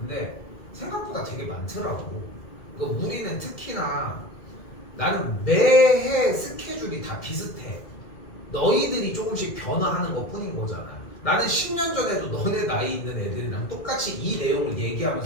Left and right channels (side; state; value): right; late; 2.2 ms